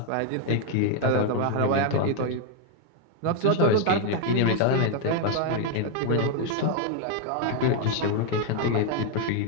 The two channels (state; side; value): different; both; correlation 0.01